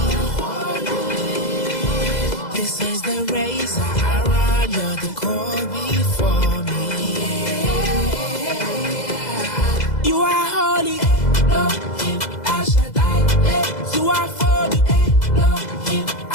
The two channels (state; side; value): late; right; 2.0 ms